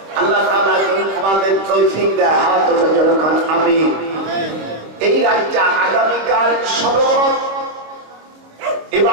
আল্লাহ তাআলা আমাদের তৌফিক দেয়, হাত উঠে যখন আমি এই রাতটা আগামীকাল সবরত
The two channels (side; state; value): left; late; 26 ms